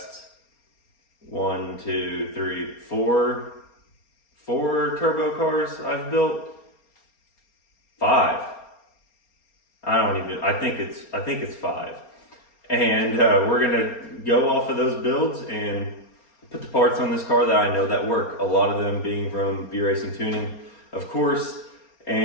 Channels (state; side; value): late; right; 4.3 ms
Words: 4 turbo cars I've built. 5. I think it's 5. And we're gonna go off of those builds and put the parts on this car that I know that work. A lot of them being from B-Racing Tuning, of course.